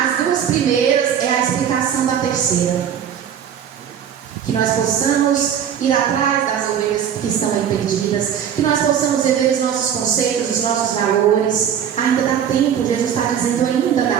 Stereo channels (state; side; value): quieter; left; 8.7 dB